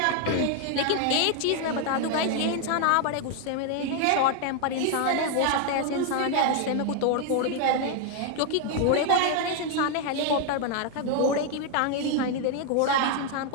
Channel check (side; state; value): both; different; correlation 0.00